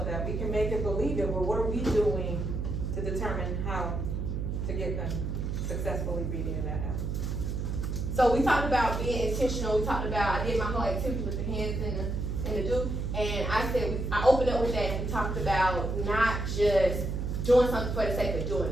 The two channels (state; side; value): noise; right; hum, 2 dB below the sound